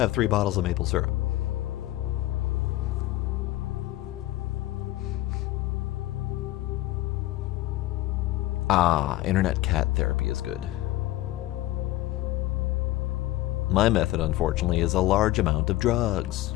3 bottles of maple syrup. Ah, internet cat therapy is good. My method, unfortunately, is a large amount of drugs.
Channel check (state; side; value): quieter; right; 16.3 dB